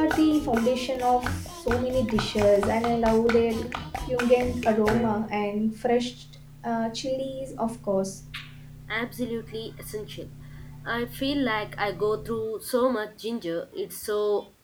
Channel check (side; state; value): both; identical; correlation 1.00